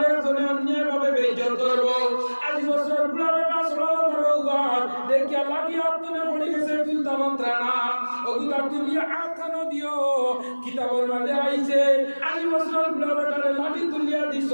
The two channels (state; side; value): inverted; both; correlation -1.00